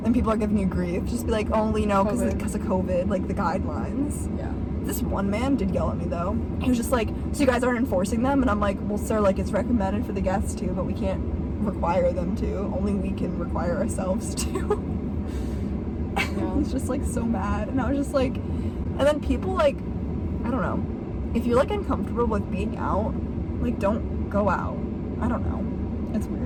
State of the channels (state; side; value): identical; both; correlation 1.00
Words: people are giving you grief, just be like, oh, you know, because of COVID, like the guidelines. Yeah. This one man did yell at me though. He was just like, so you guys aren't enforcing them? And I'm like, well, sir, like it's recommended for the guests to, but we can't require them to. Only we can require ourselves to. He's just like so mad, and I was just like, and then people like, I don't know. If you're like uncomfortable with being out, like don't go out. I don't know. It's